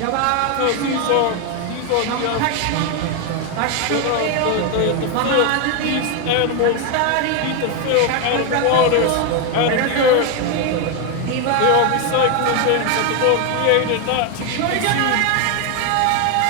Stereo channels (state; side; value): different; both; correlation 0.01